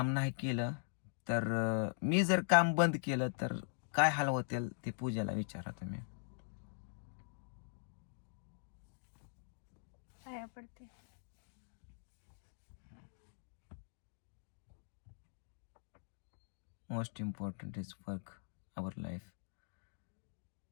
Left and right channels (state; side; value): silent; right; digital silence